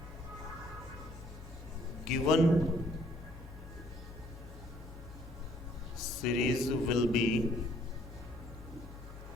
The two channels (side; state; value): both; normal; correlation 0.63